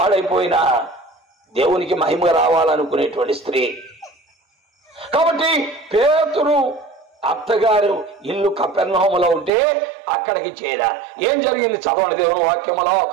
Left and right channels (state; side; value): drops out; left; at 9.5 s